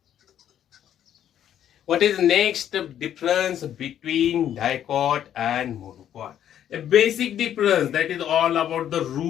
What is the next difference between dicot and monocot? A basic difference, that is all about the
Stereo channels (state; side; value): quieter; right; 10.4 dB